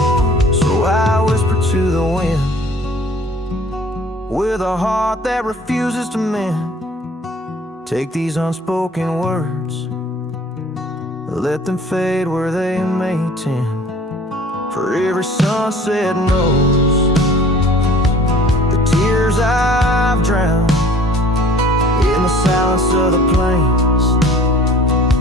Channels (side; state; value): both; normal; correlation 0.50